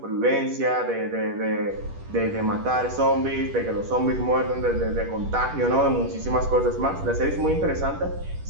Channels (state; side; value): late; left; 10 ms